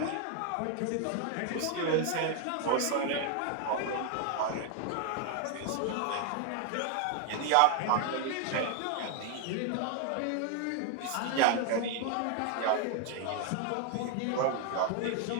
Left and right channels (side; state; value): both; different; correlation 0.00